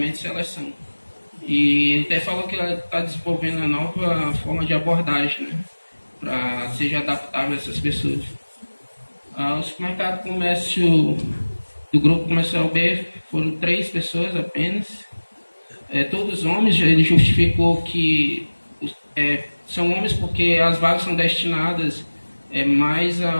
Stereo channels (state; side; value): inverted; both; correlation -1.00